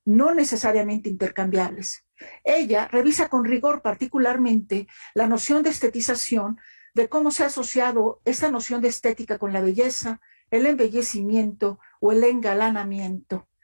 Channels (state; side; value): inverted; both; correlation -1.00